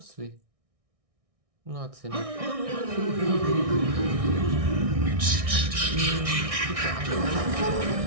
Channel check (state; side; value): late; left; 1.6 ms